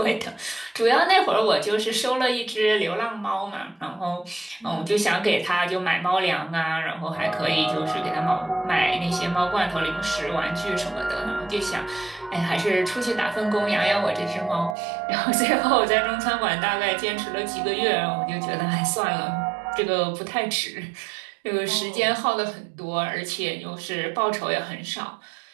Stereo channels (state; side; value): drops out; left; at 14.8 s